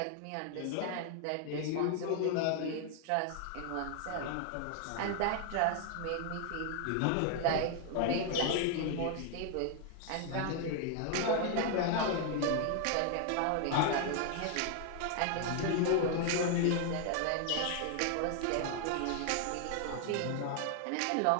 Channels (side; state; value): both; different; correlation 0.00